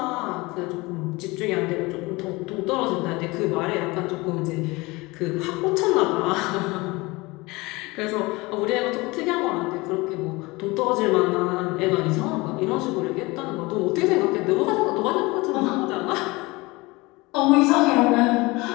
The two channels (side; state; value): right; quieter; 23.1 dB